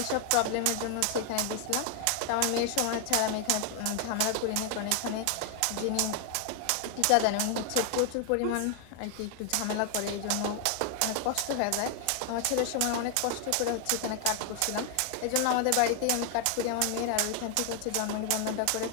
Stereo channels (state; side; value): different; both; correlation 0.00